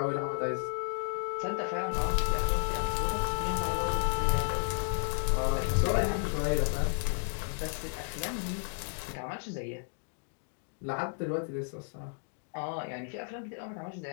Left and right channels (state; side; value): silent; right; 56 dB below the other